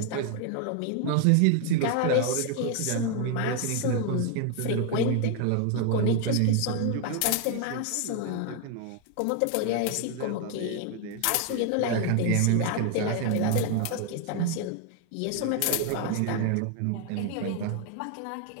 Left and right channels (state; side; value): different; both; correlation 0.01